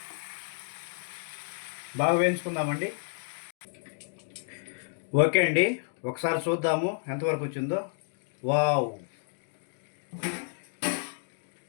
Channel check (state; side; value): silent; right; 57 dB below the other